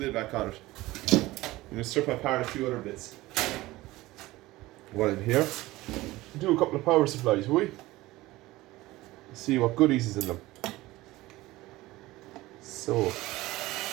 back on it. I'm going to strip apart a few other bits. While I'm here, do a couple of power supplies, will we? See what goodies is in them. So,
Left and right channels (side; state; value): left; quieter; 18.6 dB